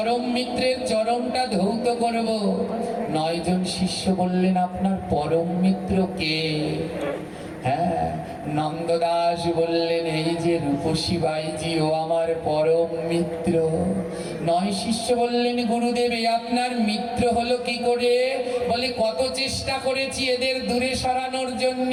মিত্রের চরণটা ধৌত করব। 9 জন শিষ্য বললেন, আপনার পরম মিত্র কে? হ্যাঁ, নন্দদাস বললেন, এই যে রূপসী বাইজি, ও আমার পরম মিত্র। 9 শিষ্য বললেন, গুরুদেব এই আপনার মিত্র হলো কি করে? বলে, কত চেষ্টা করেছি এদের দূরে সরানোর জন্য,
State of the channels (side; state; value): both; identical; correlation 1.00